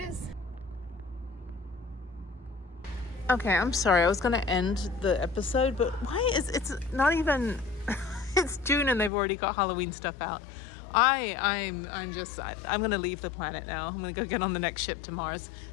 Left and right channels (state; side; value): drops out; right; at 9.1 s